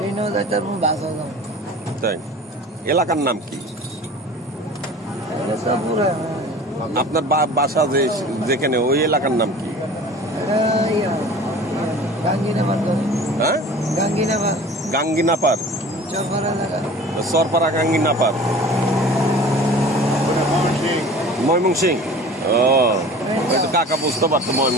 যাইতে পারবো বাসও যাবো। তাই এলাকার নাম কি আপনার? বাসা যেখানে ওই এলাকার নাম কি? হ্যাঁ গাঙ্গিনাপার সরপাড়া গাঙ্গিনাপার ময়মনসিং। ও কাকা বুঝতে পারতো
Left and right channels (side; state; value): both; normal; correlation 0.42